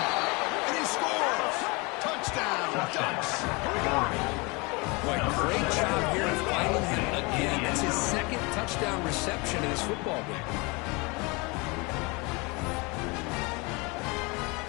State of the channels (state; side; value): quieter; right; 27.5 dB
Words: And he scores. Touchdown, Ducks. Boy, great job here of finding him down reception in this football game.